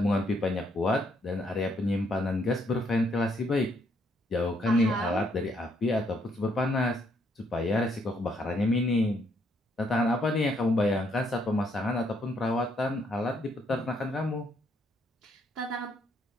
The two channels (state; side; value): normal; both; correlation 0.71